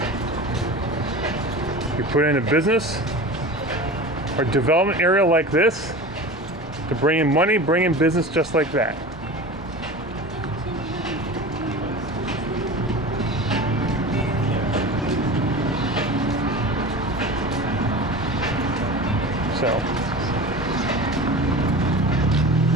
you put in a business or development area like this to bring in money, bring in business just like that. So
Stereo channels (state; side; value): normal; both; correlation 0.33